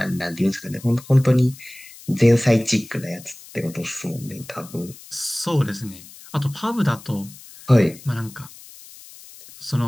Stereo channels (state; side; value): noise; left; hiss, 19 dB below the sound